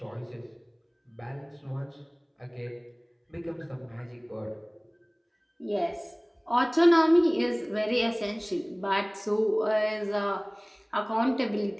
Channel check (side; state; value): both; identical; correlation 1.00